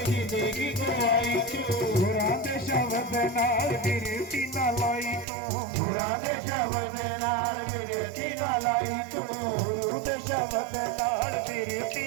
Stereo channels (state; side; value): drops out; left; at 5.2 s